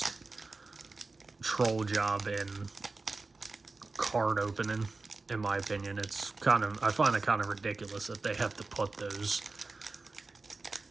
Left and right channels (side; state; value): left; quieter; 3.6 dB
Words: troll job in card opening, in my opinion. It's I find it kind of ridiculous that they have to put those